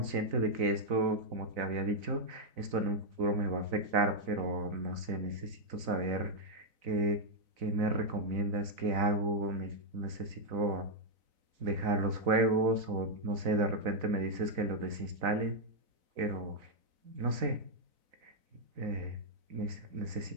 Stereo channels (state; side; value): late; left; 4.0 ms